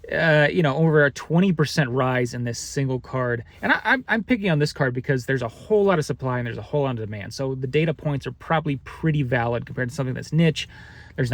a 20% rise in this single card. And I'm picking on this card because there's a whole lot of supply and there's a whole lot of demand. So the data points are probably pretty valid compared to something that's niche. There's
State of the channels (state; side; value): identical; both; correlation 1.00